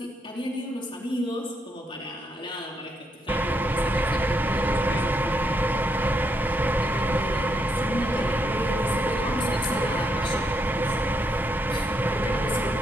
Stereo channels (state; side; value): normal; both; correlation 0.78